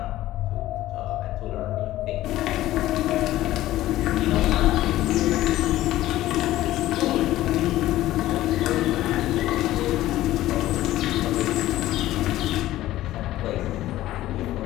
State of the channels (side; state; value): right; quieter; 15.1 dB